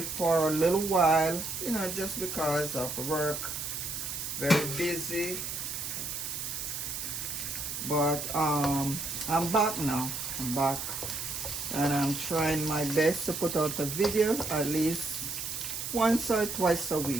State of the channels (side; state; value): right; noise; hiss, 5 dB below the sound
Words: for a little while, you know, just because of work, very busy. But I'm back now. I'm back, and I'm trying my best to put out a video at least once or twice a